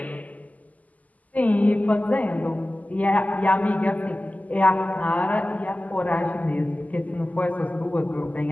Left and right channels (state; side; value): late; right; 0.077 ms